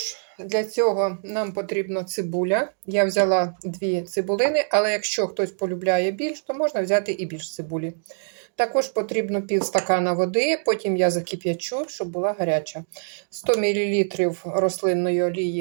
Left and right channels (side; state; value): left; silent; digital silence